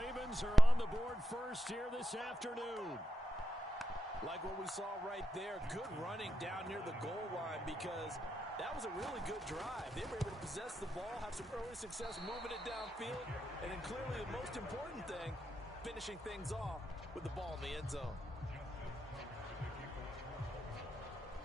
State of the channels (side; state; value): both; normal; correlation 0.86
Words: are on the board first here this afternoon. Like what we saw right there, good running down near the goal line because that was a really good drive. They were able to possess the ball, have some early success moving it downfield, and then clearly the most important thing, finishing things off with the ball in the end zone.